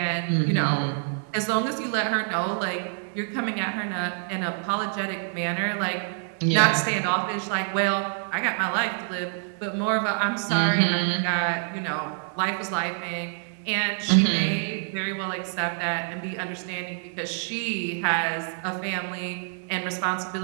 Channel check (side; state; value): left; silent; 61 dB below the other